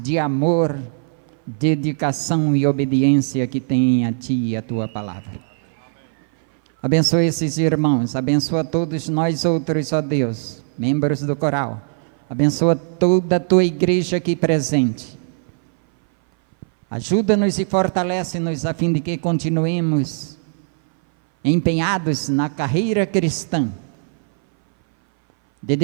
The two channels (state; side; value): silent; left; 60 dB below the other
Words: de amor, dedicação e obediência que têm a Ti e a Tua palavra. Abençoa esses irmãos, abençoa todos nós outros, ó Deus, membros do coral. Abençoa toda a Tua igreja aqui presente. Ajuda-nos e fortalece-nos a fim de que continuemos empenhados na carreira cristã,